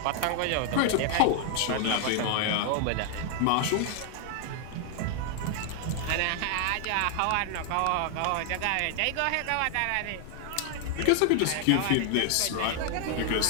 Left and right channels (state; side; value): different; both; correlation 0.00